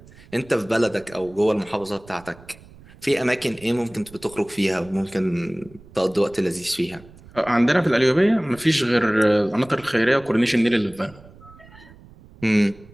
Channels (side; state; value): right; noise; rumble, 23 dB below the sound